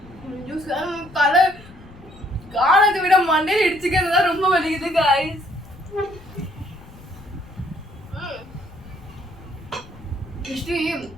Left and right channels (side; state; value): left; noise; rumble, 20 dB below the sound